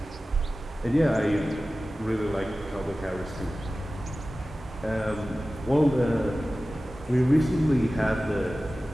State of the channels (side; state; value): both; normal; correlation 0.96